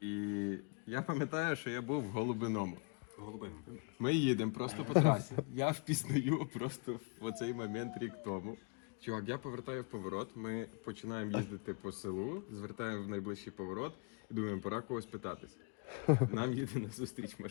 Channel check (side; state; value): right; quieter; 36.9 dB